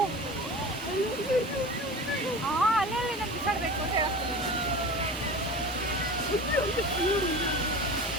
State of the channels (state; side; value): normal; both; correlation 0.34